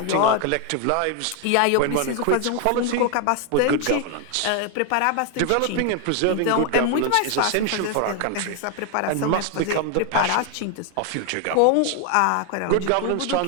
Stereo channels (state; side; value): different; both; correlation 0.00